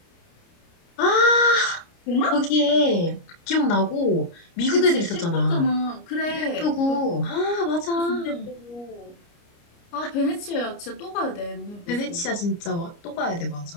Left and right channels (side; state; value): right; late; 29 ms